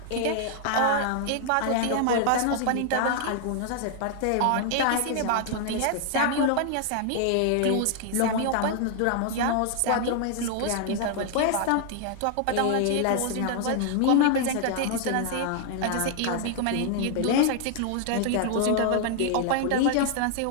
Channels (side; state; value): both; different; correlation 0.00